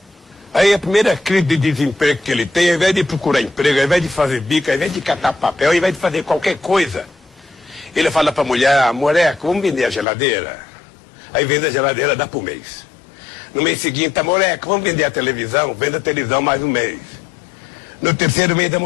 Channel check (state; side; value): drops out; right; at 10.1 s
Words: Aí a primeira crise de desemprego que ele tem, ao invés de procurar emprego, ao invés de fazer bico, ao invés de catar papel, ao invés de fazer qualquer coisa, ele fala para a mulher, moleque, vamos vender a geladeira. Aí vende a geladeira, dá por mês. No mês seguinte, moleque, vamos vender a televisão, vende a televisão mais um mês. No terceiro mês,